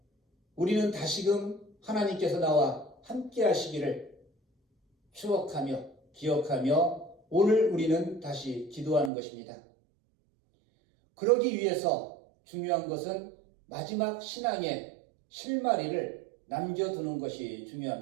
우리는 다시금 하나님께서 나와 함께 하시기를 추억하며 기억하며 오늘 우리는 다시 기도하는 것입니다. 그러기 위해서 중요한 것은 마지막 신앙의 실마리를 남겨두는 것이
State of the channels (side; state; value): left; drops out; at 9.1 s